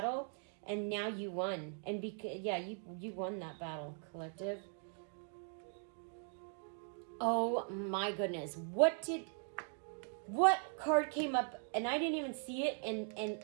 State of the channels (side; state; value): left; silent; 51 dB below the other